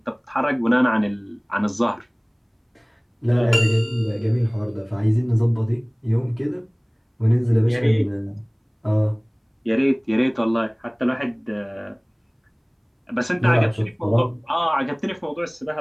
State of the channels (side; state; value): both; identical; correlation 1.00